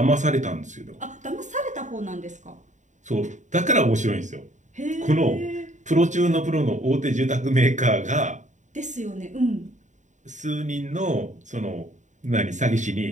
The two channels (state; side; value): late; left; 0.35 ms